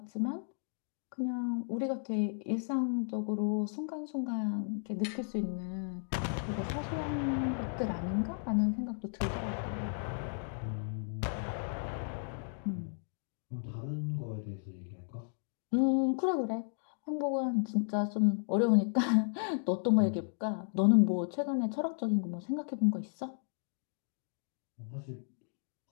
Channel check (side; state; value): right; silent; digital silence